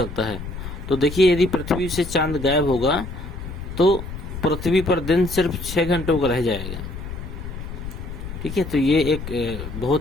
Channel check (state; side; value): noise; left; rumble, 9 dB below the sound